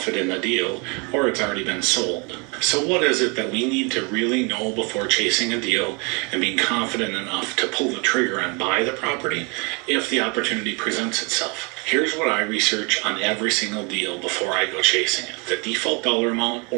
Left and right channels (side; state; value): left; quieter; 31.4 dB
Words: in the deal or it's already been sold. So what is it that we need to really know before chasing a deal and being confident enough to pull the trigger and buy the property if the opportunity presents itself? Here's what I research on every single deal before I go chasing it: the default dollar amount